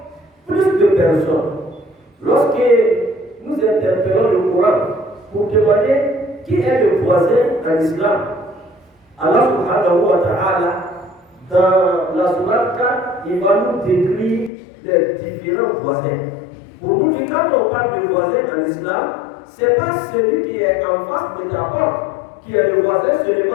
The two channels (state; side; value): drops out; right; at 14.5 s